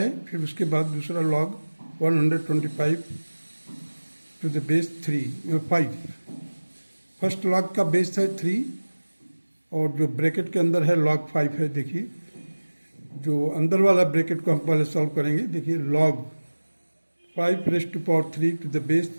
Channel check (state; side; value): inverted; both; correlation -1.00